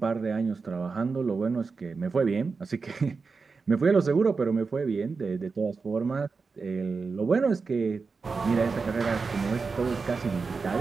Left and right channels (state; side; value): quieter; left; 4.6 dB